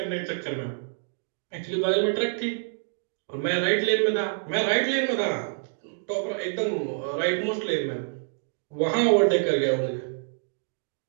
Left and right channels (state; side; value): silent; left; digital silence